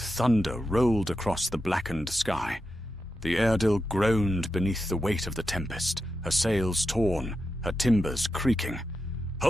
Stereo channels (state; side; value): normal; both; correlation 0.88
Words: thunder rolled across the blackened sky. The Eardil groaned beneath the weight of the tempest, her sails torn, her timbers creaking.